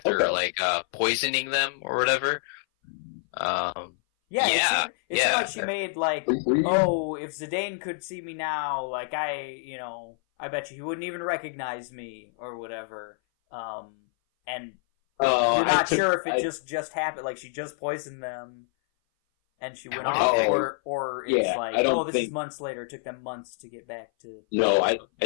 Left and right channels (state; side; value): silent; right; 57 dB below the other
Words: like poisoning them or whatever. Yeah, it seemed like she made like, oh, if Zidane could see me now, like I bet you he wouldn't even recognize me or whatever. And you're not sure if it just happened, like she just poisoned them and she went off, or it's like, this is months later. It took them months to get back to. No,